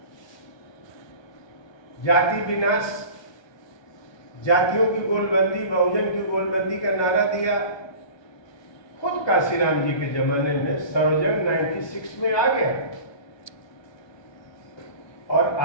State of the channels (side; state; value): right; late; 1.2 ms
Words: जाति विनाश, जातियों की गोलबंदी, बहुजन की गोलबंदी का नारा दिया। खुद कांशीराम जी के जमाने में सर्वजन 96 में आ गया। और